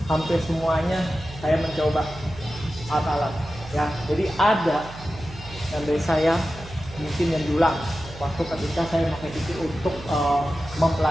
hampir semuanya saya mencoba alat-alat ya. Jadi ada yang dari saya mungkin yang diulang waktu ketika saya pakai PT untuk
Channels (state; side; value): noise; right; hum, 15 dB below the sound